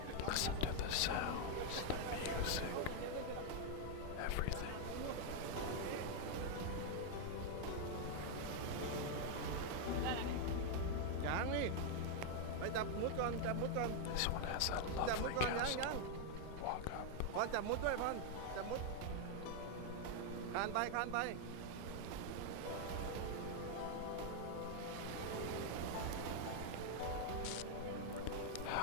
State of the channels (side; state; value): both; different; correlation 0.00